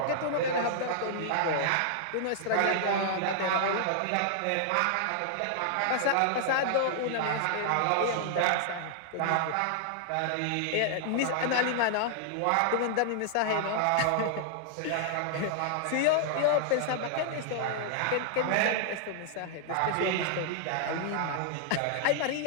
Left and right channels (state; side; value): different; both; correlation -0.01